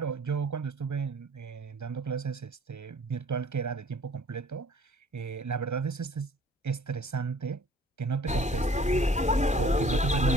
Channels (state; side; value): normal; both; correlation 0.54